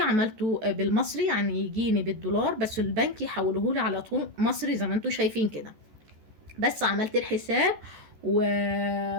بالمصري، يعني يجيني بالدولار، بس البنك يحوله لي على طول مصري زي ما انتم شايفين كده. بس عملت الحساب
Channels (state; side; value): late; left; 14 ms